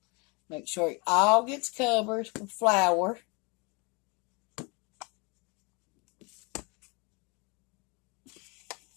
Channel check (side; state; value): right; quieter; 29.8 dB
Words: Make sure it all gets covered with flour.